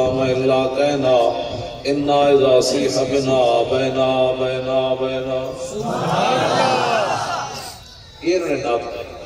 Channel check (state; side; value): identical; both; correlation 1.00